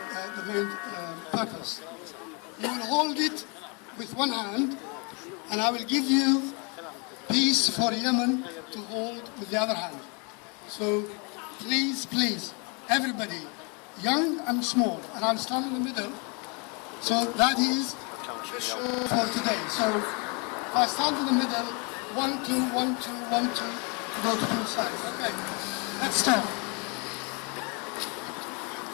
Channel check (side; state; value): right; quieter; 33.2 dB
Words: main purpose. You will hold it with one hand, and I will give you peace for Yemen to hold with the other hand. So please, please, everybody, young and small, and I'll stand in the middle. So that is the show for today. So if I stand in the middle, 1, 2, 1, 2, 1, 2, go to both sides. Okay, let's start.